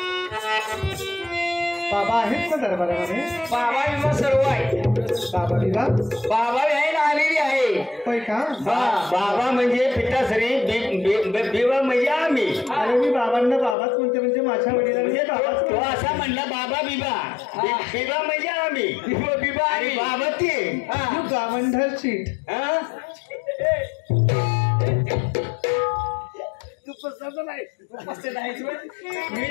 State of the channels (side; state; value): right; drops out; at 13.8 s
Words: बाबा आहेत का दरबारामध्ये? बाबा विमा सर्व आहे बाबा बिबा बाबा आहे आलेली आहे होय का? बाबा म्हणजे पिताश्री, बिबा म्हणजे आम्ही. अरे मी बाबांना बाबाच म्हणते, म्हणजे माझ्या वडिलांनी बाबाच तो असा म्हणला बाबा बिबा. बिबा म्हणजे आम्ही. बिबा आणि बाबा ते. तू गावंढळ चीट. हा? मी